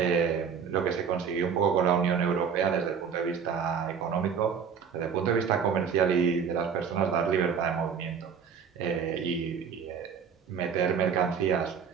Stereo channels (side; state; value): left; quieter; 6.8 dB